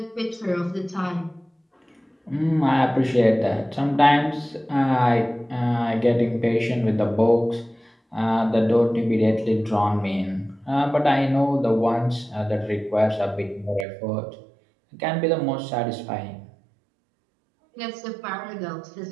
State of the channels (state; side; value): drops out; left; at 13.9 s